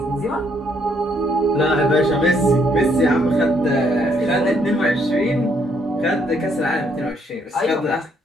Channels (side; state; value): both; normal; correlation 0.70